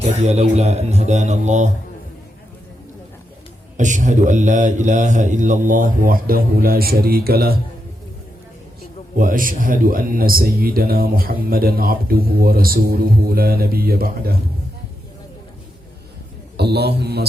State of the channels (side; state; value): both; normal; correlation 0.84